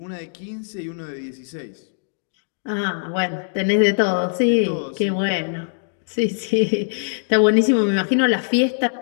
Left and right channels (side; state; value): right; silent; digital silence